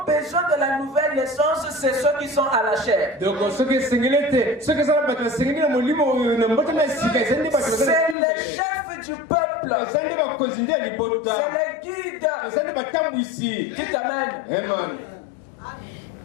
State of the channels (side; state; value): right; drops out; at 8.2 s